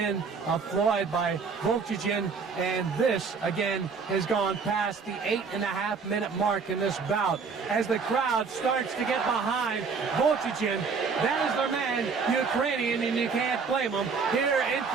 of Floyd by Volchichin, and this again has gone past the 8.5 minute mark in this bout as the crowd starts to get behind Volchichin. That is their man, Ukrainian, and you can't blame him. Here in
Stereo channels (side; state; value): left; quieter; 5.2 dB